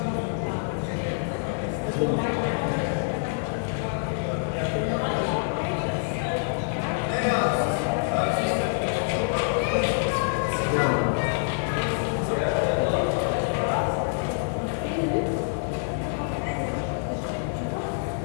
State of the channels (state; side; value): silent; right; digital silence